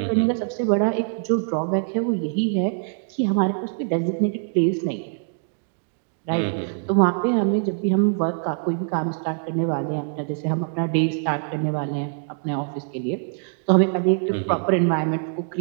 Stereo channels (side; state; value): left; silent; 63 dB below the other